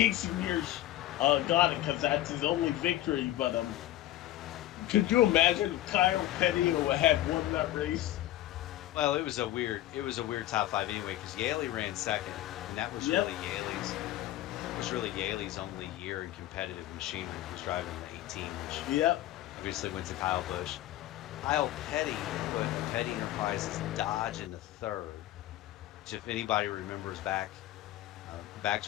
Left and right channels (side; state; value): right; quieter; 14.5 dB